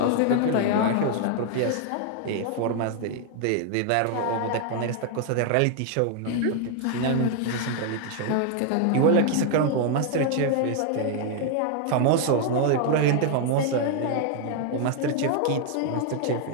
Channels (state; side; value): different; both; correlation 0.00